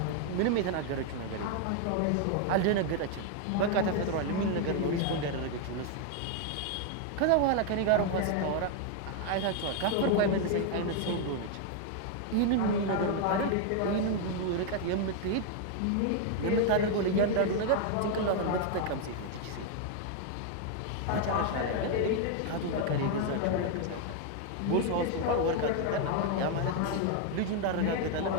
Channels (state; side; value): different; both; correlation 0.00